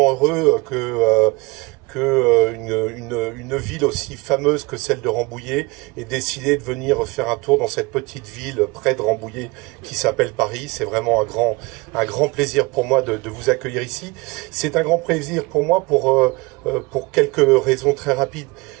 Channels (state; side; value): quieter; left; 25.2 dB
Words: heureux que une ville aussi fameuse que celle de Rambouillet ait décidé de venir faire un tour dans cette petite ville près de Rambouillet qui s'appelle Paris. C'est vraiment un grand plaisir pour moi de vous accueillir ici. C'est un grand plaisir pour moi pour quelques raisons très rapides.